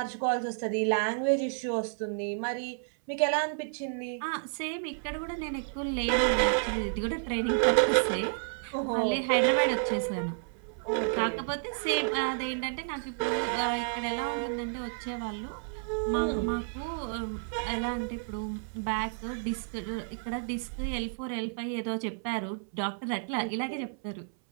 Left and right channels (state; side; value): silent; left; 57 dB below the other